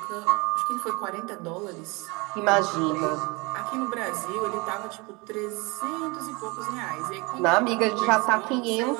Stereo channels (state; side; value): quieter; left; 26.8 dB